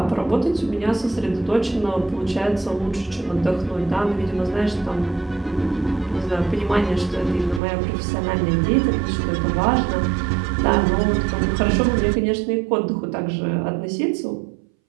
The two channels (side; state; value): left; drops out; at 7.6 s